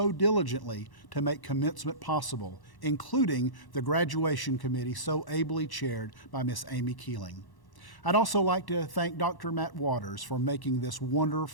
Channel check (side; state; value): right; late; 1.1 ms